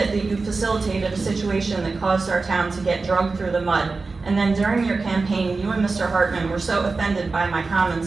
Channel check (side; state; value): left; quieter; 4.0 dB